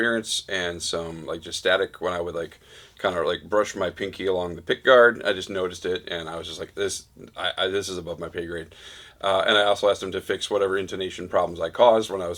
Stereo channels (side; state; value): both; identical; correlation 1.00